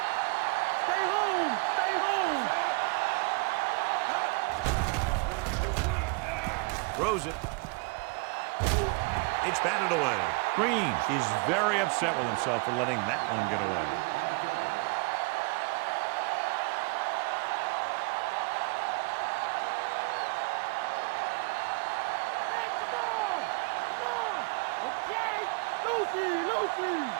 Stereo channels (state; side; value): quieter; left; 29.2 dB